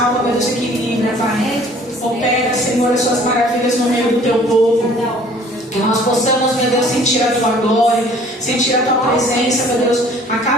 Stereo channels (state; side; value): normal; both; correlation 0.53